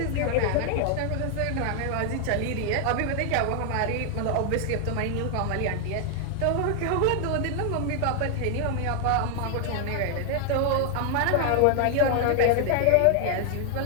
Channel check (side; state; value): both; different; correlation 0.00